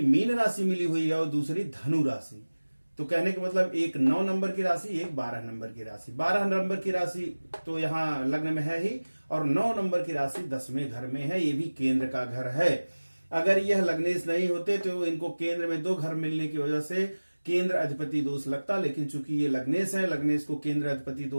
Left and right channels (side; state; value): both; inverted; correlation -1.00